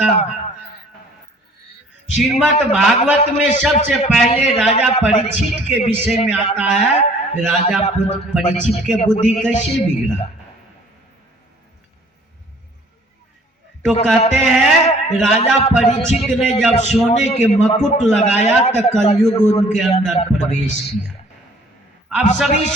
श्रीमद् भागवत में सबसे पहले राजा परीक्षित के विषय में आता है। राजा परीक्षित के बुद्धि कैसे बिगड़ा? तो कहते हैं राजा परीक्षित ने जब सोने के मुकुट लगाया तो कलयुग उनके अंदर प्रवेश किया। आप सभी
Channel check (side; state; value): both; normal; correlation 0.55